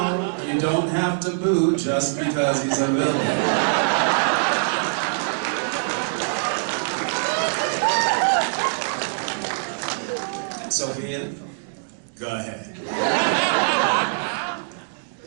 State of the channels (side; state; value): left; silent; digital silence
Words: you don't have to boo just because he's a villain. Sophia, go ahead.